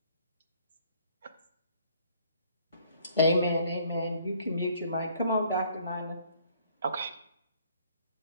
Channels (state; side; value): inverted; both; correlation -0.61